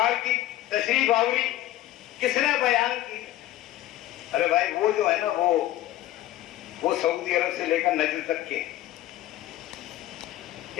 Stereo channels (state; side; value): quieter; right; 14.4 dB